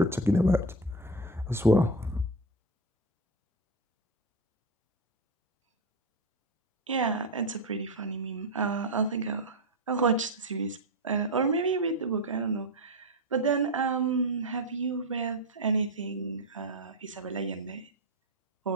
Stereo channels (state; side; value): normal; both; correlation 0.14